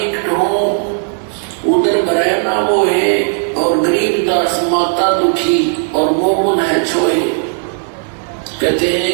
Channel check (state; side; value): silent; left; 64 dB below the other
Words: हूँ उधर भरे ना वो है, और गरीबदास माता दुखी और मोमन है छोए। कहते